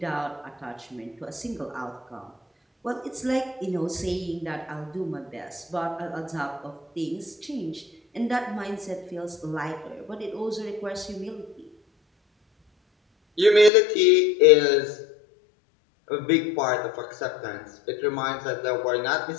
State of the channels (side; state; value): right; drops out; at 13.7 s